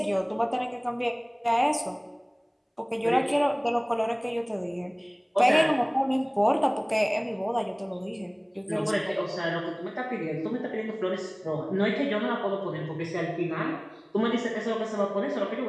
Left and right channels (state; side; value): identical; both; correlation 1.00